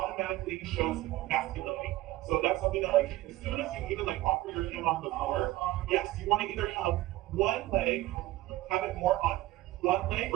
shows masculinity. So that's something that like as soon as you even like offer your hand on the floor, yes, you want to either have one leg, have it more on one leg,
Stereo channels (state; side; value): quieter; left; 17.2 dB